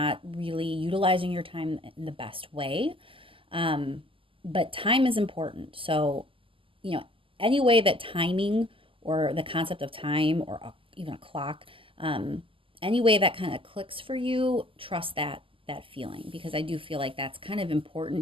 really utilizing your time in the best way. But time is important. So, any way that timing or the concept of time or even a clock, any way that kind of clicks for you, trust that feeling, because I do feel like that's kind of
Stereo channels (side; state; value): left; late; 0.25 ms